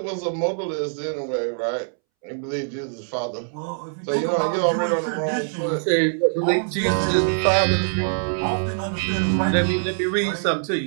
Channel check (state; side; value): silent; left; 63 dB below the other